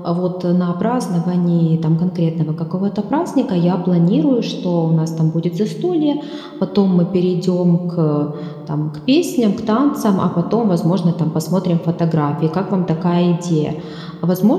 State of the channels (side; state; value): both; identical; correlation 1.00